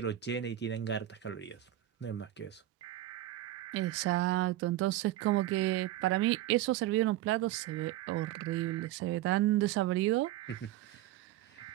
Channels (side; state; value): left; quieter; 14.3 dB